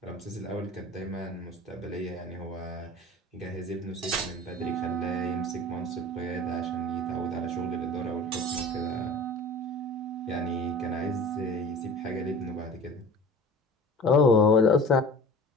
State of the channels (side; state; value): both; normal; correlation 0.40